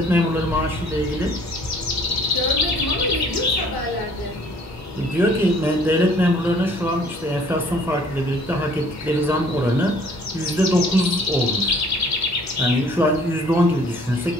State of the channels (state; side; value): normal; both; correlation 0.56